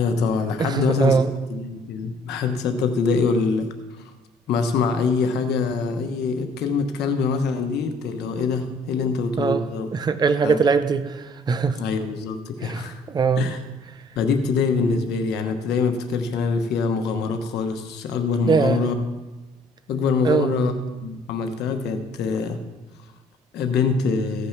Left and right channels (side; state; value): both; normal; correlation 0.59